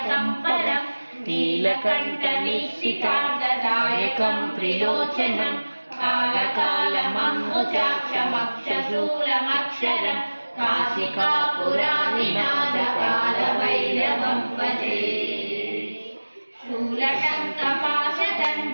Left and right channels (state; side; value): inverted; both; correlation -1.00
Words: परं नीलकण्ठनिश्चितार्धदायकं त्रिलोचनं कालकालमङ्गुजाक्षमक्षशूलमक्षरं काशिकापुरानिनादकालभैरवं भजे